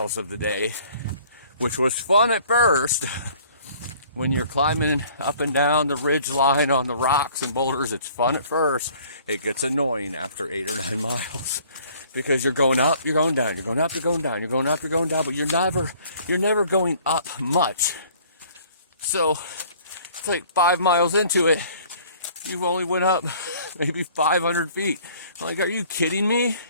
of the day, which was fun at first. When you're climbing up and down the ridge line on the rocks and boulders, it's fun at first. It gets annoying after 8 or 9 miles because you're going up, you're going down, you're going up, you're going down, you're going up, you're going down, but you're never going up much. So it's like 5 miles into it, you've only went up maybe 500 feet. I'm like, are you kidding me?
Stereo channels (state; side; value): inverted; both; correlation -0.55